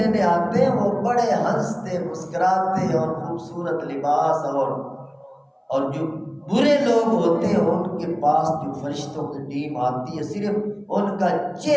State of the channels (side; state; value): both; identical; correlation 1.00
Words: آتے ہیں وہ بڑے ہنستے مسکراتے اور خوبصورت لباس اور جو برے لوگ ہوتے ہیں ان کے پاس جو فرشتوں کی ٹیم آتی ہے، صرف ان کا